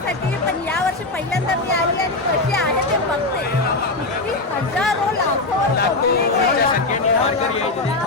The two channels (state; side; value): quieter; right; 3.1 dB